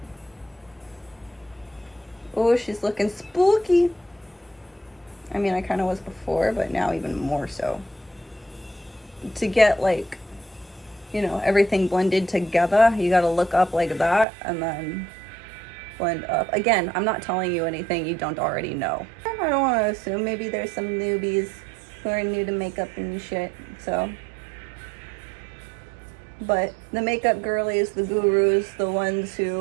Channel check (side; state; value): left; drops out; at 14.2 s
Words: Oh, she's looking spooky. I mean, I kind of was before, but now even more so. To get like, you know, everything blended together, you gotta look up like that and then blend up. Again, I'm not telling you anything you don't already know. I don't want to assume. Maybe there's some newbies who are new to makeup and shit, so. But the makeup girlies, the gurus, the ones